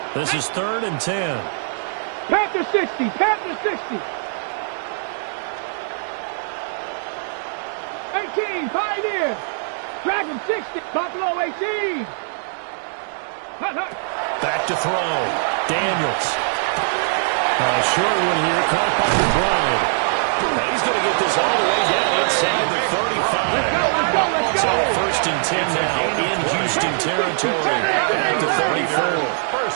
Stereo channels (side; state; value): left; silent; digital silence